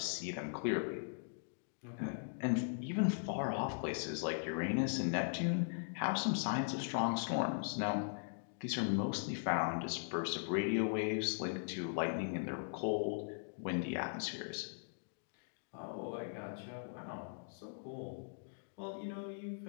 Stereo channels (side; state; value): right; silent; digital silence